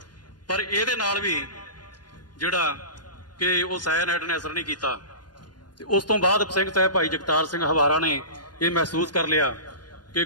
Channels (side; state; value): right; late; 0.70 ms